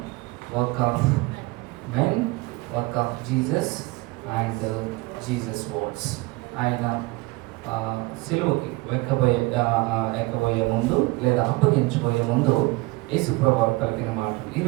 work of men, work of Jesus and Jesus words. ఆయన సిలువకి ఎక్కబోయే ముందు లేదా అప్పగించబోయే ముందు యేసు ప్రభువు పలికిన మాటలు.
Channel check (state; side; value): quieter; left; 23.4 dB